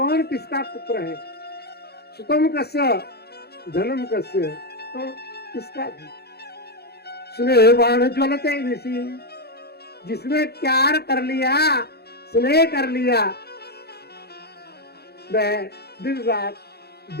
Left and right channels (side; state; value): right; late; 0.47 ms